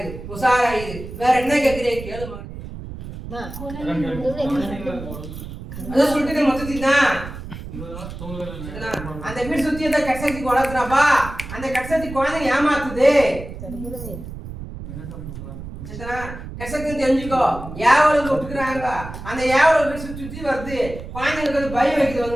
உஷாராயிரு. வேற என்ன கேட்கிறேன் கேளு மகனே. அதான் சொல்லிட்டு மொத்தத்தி தான் அந்த வீடு சுத்தி அந்த கட்சத்தி வளர்க்குறாப்பா. அந்த கட்சத்தி குழந்தை ஏமாத்துது. கட்சத்தி தெரிஞ்சுக்கோ, ஏவலும் விட்டுக்கிறாங்க. அந்த ஏவலை வீடு சுத்தி சுத்தி வருது, குழந்தைங்களுக்கு அது பயம் வைக்கிறது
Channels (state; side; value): noise; right; rumble, 11 dB below the sound